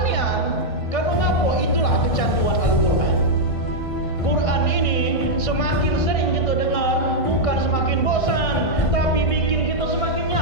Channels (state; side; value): late; right; 1.5 ms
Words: niat. Karena ngapa? Itulah kecanduan Al-Quran. Quran ini semakin sering kita dengar, bukan semakin bosan, tapi bikin kita semakin